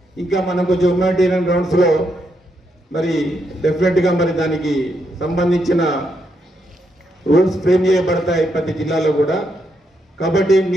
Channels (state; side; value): normal; both; correlation 0.79